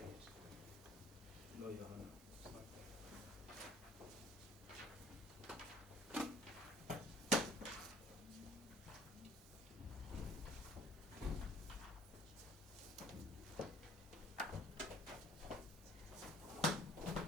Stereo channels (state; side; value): normal; both; correlation 0.52